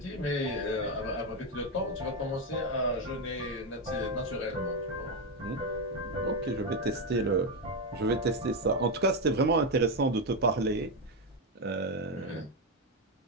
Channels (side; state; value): both; normal; correlation 0.08